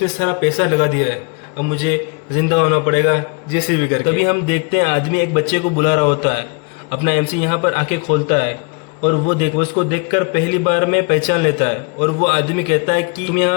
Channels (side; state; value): right; quieter; 33.9 dB